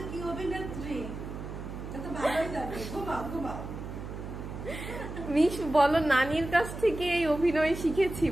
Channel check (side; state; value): right; noise; hum, 9 dB below the sound